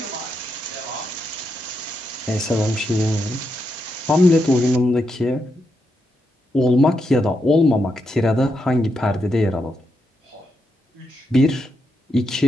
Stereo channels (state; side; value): normal; both; correlation 0.83